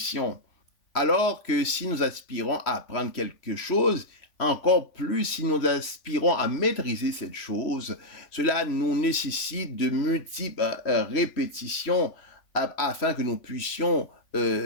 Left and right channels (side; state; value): right; late; 3.5 ms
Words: Alors que si nous aspirons à apprendre quelque chose, encore plus si nous aspirons à maîtriser cette chose, cela nous nécessite de multiples répétitions afin que nous puissions